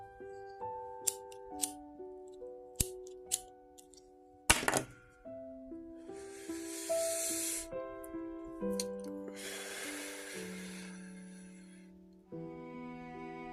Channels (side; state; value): both; identical; correlation 1.00